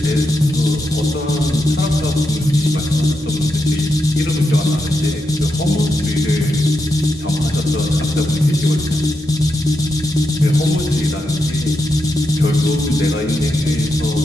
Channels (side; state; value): both; normal; correlation 0.85